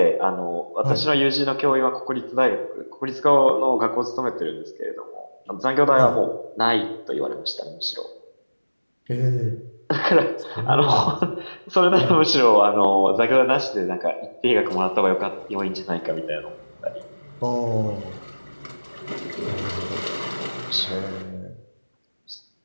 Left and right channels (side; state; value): both; inverted; correlation -1.00